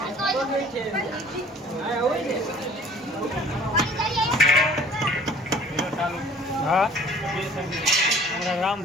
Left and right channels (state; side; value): normal; both; correlation 0.51